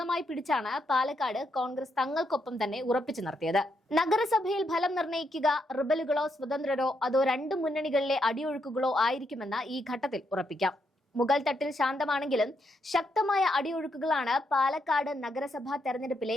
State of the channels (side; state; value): both; normal; correlation 0.79